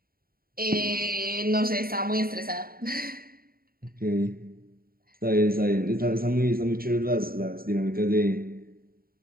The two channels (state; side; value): late; left; 0.43 ms